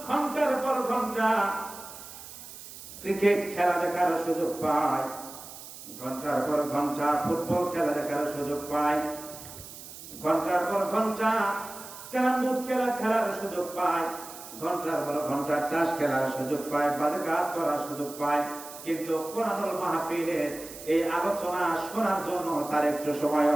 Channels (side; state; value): right; noise; hiss, 14 dB below the sound